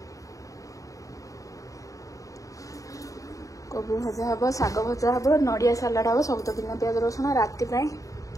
कोबी भजा हम शाग भजा हम नड़िया सालाड हम सब तो बिना प्याज रसुण राति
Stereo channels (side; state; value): right; late; 0.16 ms